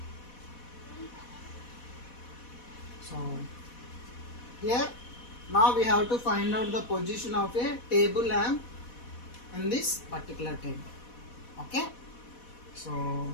So here now we have to find out the position of a table lamp in this particular table. Okay,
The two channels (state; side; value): late; right; 4.1 ms